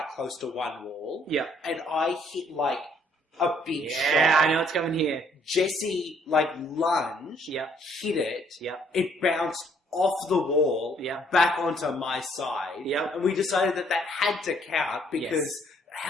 close to one wall. Yeah. And I hit, like, a big Yeah, shot. I know what's coming here. Jesse, like, lunged, Yeah. hit it. Yeah. It bounced off the wall, Yeah. back onto my side. Yeah. And we decided that had to count because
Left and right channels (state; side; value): normal; both; correlation 0.65